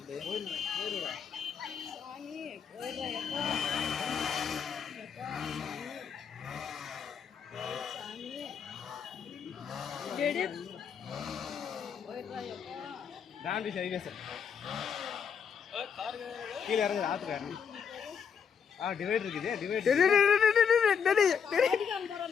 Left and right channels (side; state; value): right; quieter; 7.0 dB